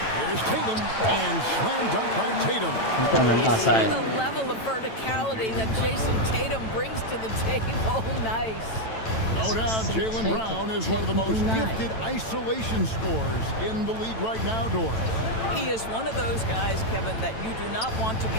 Here's Tatum, and slam dunk by Tatum. You see the level of verticality that Jason Tatum brings to the table. Nice. No doubt, Jaylen Brown is one of the most gifted isolation scorers in the league right now, Doris. He is one of those guys, Kevin, that you do not want to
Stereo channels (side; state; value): right; late; 9.0 ms